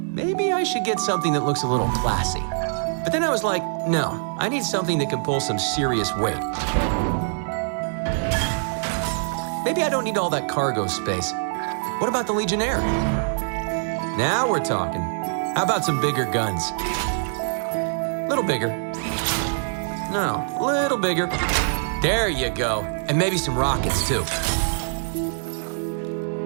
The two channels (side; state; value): left; silent; 62 dB below the other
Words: maybe I should get something that looks a little classy. But then I was like, no, I need something that can pull some serious weight. Maybe I don't need all that cargo space. What about the Legionnaire? Now we're talking. How about some bigger guns? Little bigger. No, little bigger. There you go. And maybe some rockets, too.